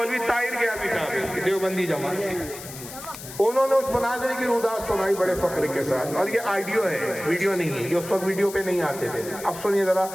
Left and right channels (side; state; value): left; noise; hiss, 13 dB below the sound